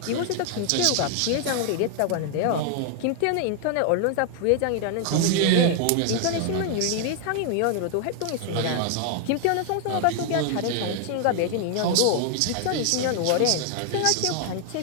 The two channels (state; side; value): different; both; correlation 0.00